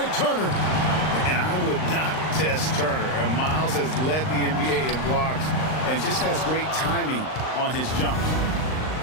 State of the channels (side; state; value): right; late; 39 ms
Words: Turner. And I would not test Turner. And Miles has led the NBA in blocks and just has great timing on his jumps.